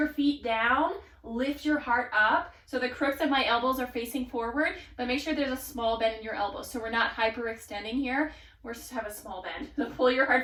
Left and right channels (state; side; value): identical; both; correlation 1.00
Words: feet down, lift your heart up. So the crooks of my elbows are facing forward, but make sure there's a small bend in your elbows. So we're not hyperextending here. We're just have a small bend. So pull your